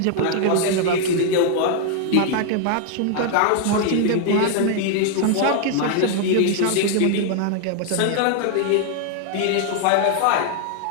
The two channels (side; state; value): both; different; correlation 0.00